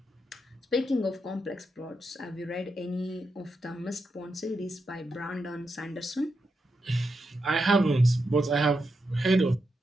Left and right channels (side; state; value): both; normal; correlation 0.85